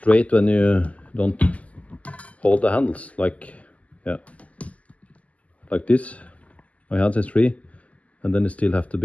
when you don't hold the handles, like like this. My hands is free, and then it still have to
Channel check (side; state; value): right; late; 0.070 ms